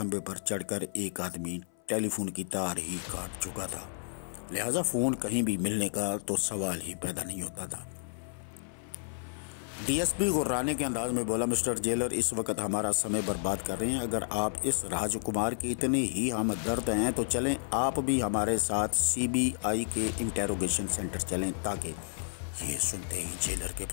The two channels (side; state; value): right; silent; 56 dB below the other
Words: پر چڑھ کر ایک آدمی ٹیلی فون کی تار ہی کاٹ چکا تھا، لہٰذا فون کہیں بھی ملنے کا تو سوال ہی پیدا نہیں ہوتا تھا۔ ڈی ایس پی غرانے کے انداز میں بولا، مسٹر جیلر اس وقت ہمارا سمے برباد کر رہے ہیں۔ اگر آپ اس راج کمار کی اتنے ہی ہمدرد ہیں تو چلیں آپ بھی ہمارے ساتھ سی بی آئی کے انٹیروگیشن سینٹر چلیں۔ تاکہ یہ سنتے ہی جیلر کے